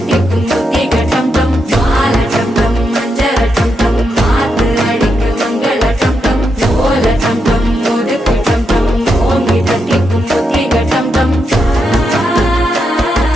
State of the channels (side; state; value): both; normal; correlation 0.83